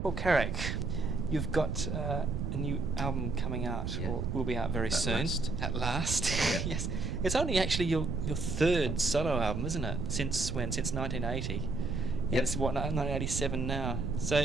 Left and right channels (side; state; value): right; noise; rumble, 2 dB below the sound